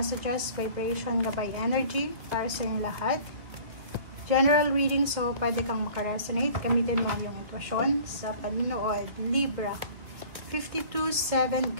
vibration, gabay energy para sa inyong lahat. General reading, so pwede kang makaresonate. Gamitin mo ang iyong intuition sa panunood. Libra 52-7,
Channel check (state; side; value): late; left; 2.4 ms